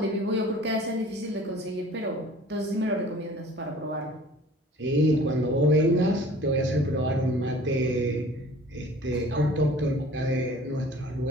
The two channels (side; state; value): both; normal; correlation 0.48